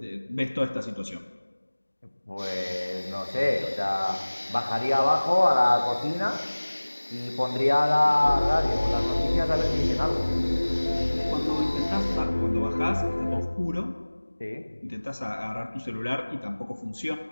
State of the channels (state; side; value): inverted; both; correlation -1.00